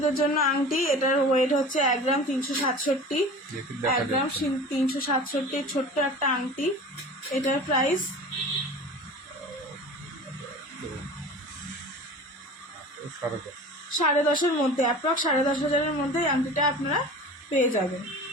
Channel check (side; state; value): both; normal; correlation 0.38